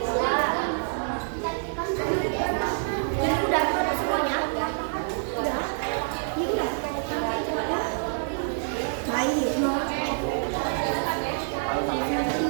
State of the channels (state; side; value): silent; left; digital silence